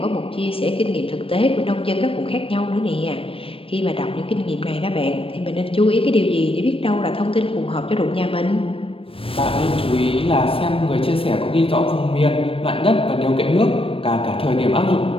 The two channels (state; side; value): late; right; 0.27 ms